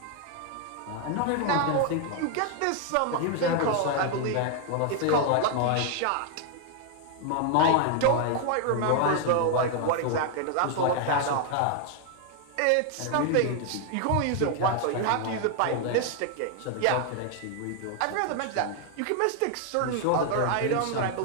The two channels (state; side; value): different; both; correlation 0.00